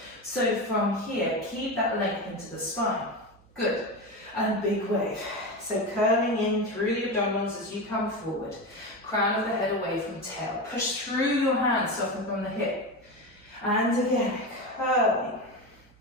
So from here, keep that length into the spine. Good. And big wave. So curling in through the abdominals as you come forward. Crown of the head away from tail. Push through your hands, soften from the hip. And again, curling.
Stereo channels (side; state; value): right; noise; hum, 29 dB below the sound